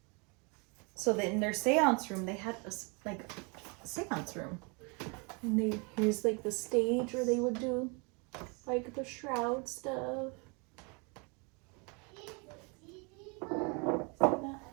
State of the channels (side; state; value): left; quieter; 32.1 dB